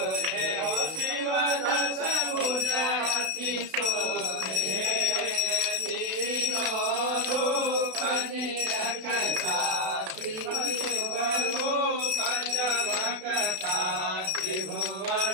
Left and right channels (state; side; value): late; left; 32 ms